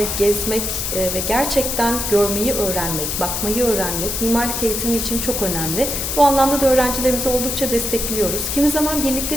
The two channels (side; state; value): left; noise; hiss, 2 dB below the sound